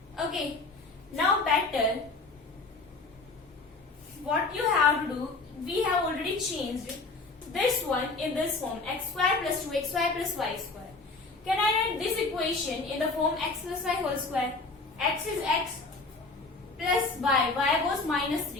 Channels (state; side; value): quieter; right; 3.7 dB